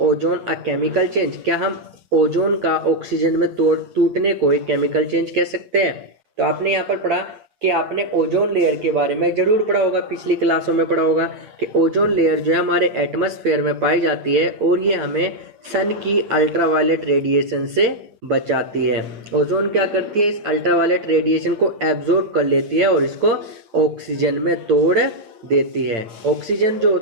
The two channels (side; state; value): left; late; 9.2 ms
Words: ozone a chemical change? क्या हम ओजोन का ऑक्सीजन में टूटने को एक केमिकल चेंज कह सकते हैं? तो आपने यहाँ पर पढ़ा कि आपने ओजोन लेयर के बारे में जरूर पढ़ा होगा, पिछली क्लासों में पढ़ा होगा कि ओजोन लेयर जो है हमारे एटमॉस्फेयर में पाई जाती है और ये हमें सन की अल्ट्रावायलेट रेडिएशन से बचाती है। ओजोन क्या करती है? इस अल्ट्रावायलेट रेडिएशन को एब्जॉर्ब कर लेती है और इसको ऑक्सीजन में तोड़ देती है। ऑक्सीजन जो